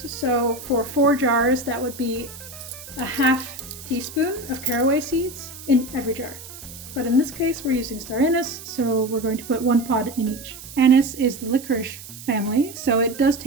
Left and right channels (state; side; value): noise; right; hiss, 15 dB below the sound